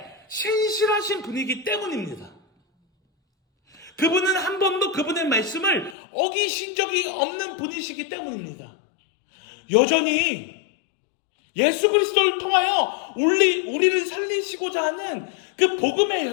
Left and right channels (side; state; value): right; drops out; at 6.0 s